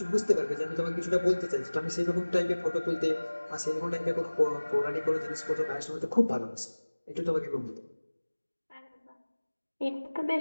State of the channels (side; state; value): both; inverted; correlation -1.00